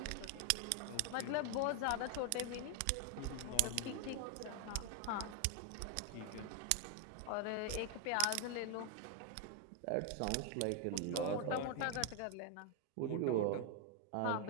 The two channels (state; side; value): different; both; correlation 0.00